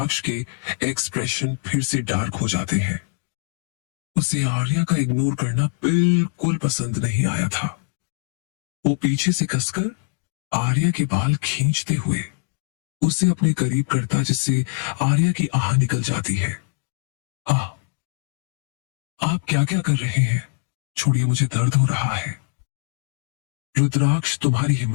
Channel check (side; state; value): right; silent; digital silence